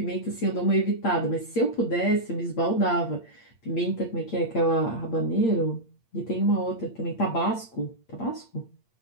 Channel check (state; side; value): late; right; 8.7 ms